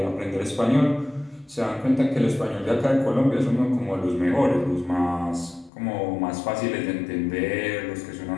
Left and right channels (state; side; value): drops out; right; at 5.7 s